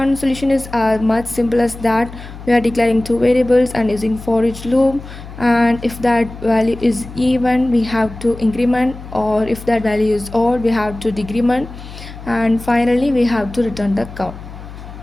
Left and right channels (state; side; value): noise; left; hum, 14 dB below the sound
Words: solution is much simple as that. We are declaring two variables and using for each loop, and if that value is even, we have to increment, or if that value is odd, we have to decrement, and finally we have to return the count.